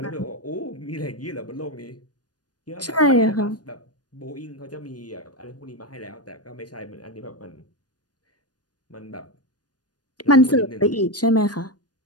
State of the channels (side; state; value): right; late; 0.69 ms